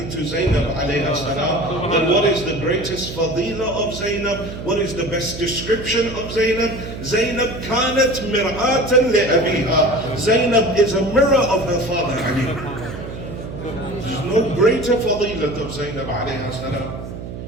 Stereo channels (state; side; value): noise; right; hum, 10 dB below the sound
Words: to Zainab alayha salam. That what is the greatest fadila of Zainab? What is the best description of Zainab? Zainab كانت مرآة لأبيها. Zainab is a mirror of her father Ali. There's no greater fadilat of Zainab alayha salam